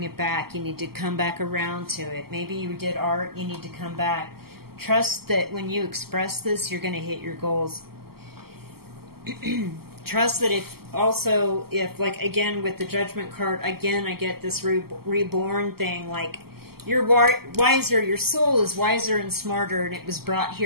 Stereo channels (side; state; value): left; late; 0.95 ms